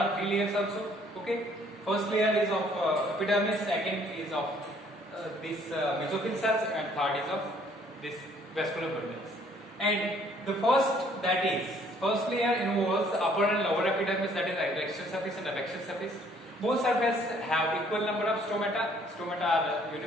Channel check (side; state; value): both; normal; correlation 0.61